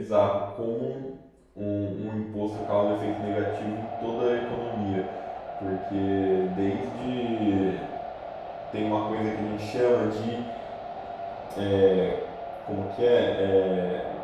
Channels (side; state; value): both; identical; correlation 1.00